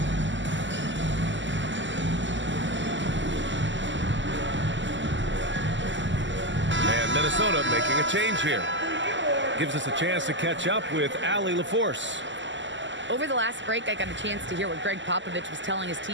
And Minnesota making a change here. Gives us a chance to catch up with Allie LaForce. Over the last break, I got a chance to hear what Greg Popovich was telling his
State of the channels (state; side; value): late; left; 0.54 ms